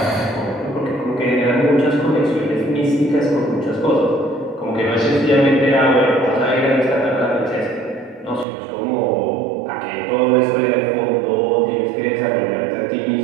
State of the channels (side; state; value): left; drops out; at 8.5 s